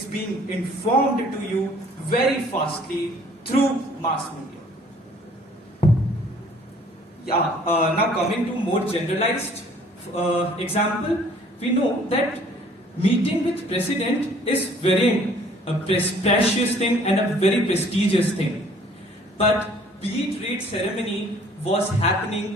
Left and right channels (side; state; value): both; normal; correlation 0.56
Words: being informed to you very fastly through mass media. Now coming to more generalized example, we know that meeting with president is very precious thing and a very prestigious thing. But beat read ceremony was